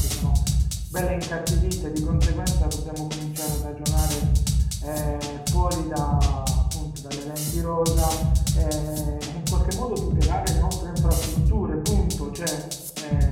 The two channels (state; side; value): identical; both; correlation 1.00